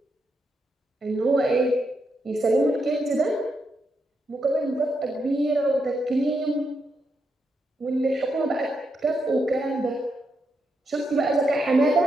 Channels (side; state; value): both; normal; correlation 0.82